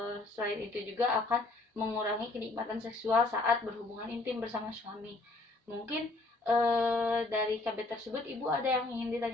selain itu juga akan mengurangi kenikmatan seksual saat berhubungan intim bersama suami. Mungkin dari KB tersebut Ibu ada yang ingin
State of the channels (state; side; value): quieter; right; 3.2 dB